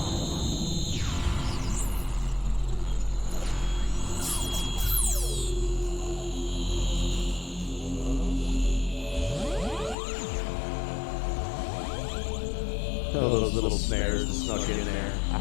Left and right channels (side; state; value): right; drops out; at 10.0 s